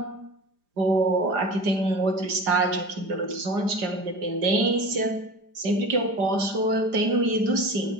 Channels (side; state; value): left; late; 5.0 ms